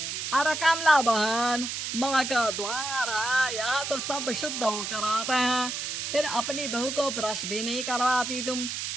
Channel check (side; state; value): right; noise; hiss, 4 dB below the sound